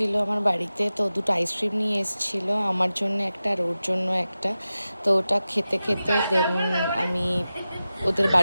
আমার বাড়িতে। তো দুটো আইসক্রিম নিয়ে এসেছিলো, আমার জন্য একটা আর ওর জন্য একটা। তো ওটা খেতে খেতে দেন আমি ওদের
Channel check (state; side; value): inverted; both; correlation -0.94